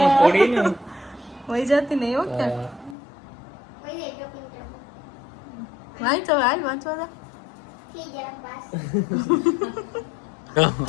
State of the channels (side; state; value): right; drops out; at 3.0 s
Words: પડી ને. વહી જતી નહીં હો ક્યાં. હા. કોઈ નહીં તો પિંટર વાંચ હવે હાલ વાંચવા દે. થઈ ગયા પાસ.